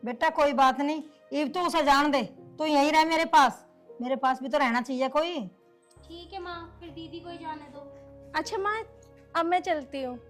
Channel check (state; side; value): identical; both; correlation 1.00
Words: बेटा कोई बात नहीं, इब तो उसे जान दे। तू यहीं रह मेरे पास भी तो रहना चाहिए कोई। ठीक है माँ, फिर दीदी को ही जाने दो। अच्छा माँ, अब मैं चलती हूँ।